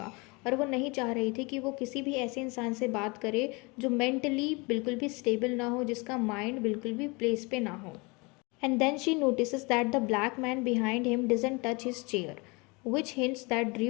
और वो नहीं चाह रही थी कि वो किसी भी ऐसे इंसान से बात करे जो मेंटली बिल्कुल भी स्टेबल ना हो, जिसका माइंड बिल्कुल भी प्लेस पे ना हो। And then she notices that the black man behind him doesn't touch his chair, which hints that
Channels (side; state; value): right; quieter; 27.6 dB